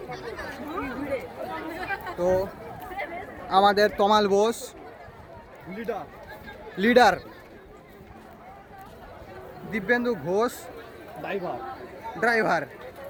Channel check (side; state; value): both; identical; correlation 1.00